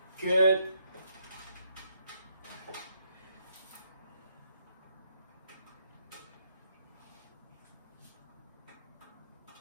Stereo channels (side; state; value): both; inverted; correlation -0.75